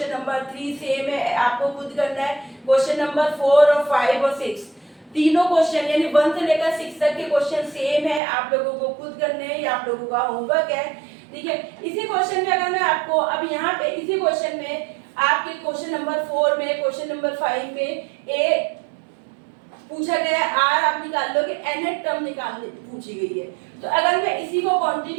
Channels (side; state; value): left; drops out; at 8.2 s